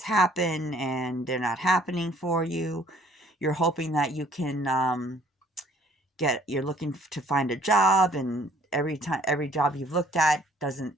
happen, and they're not happening for you. You're hoping that you can you're looking to find a job, and every job you've looked at doesn't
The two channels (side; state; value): both; normal; correlation 0.59